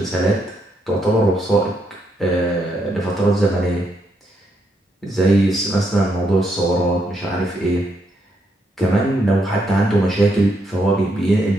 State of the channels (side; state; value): both; normal; correlation 0.77